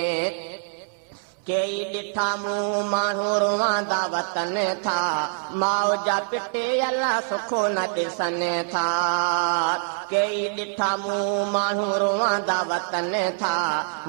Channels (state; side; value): silent; left; 62 dB below the other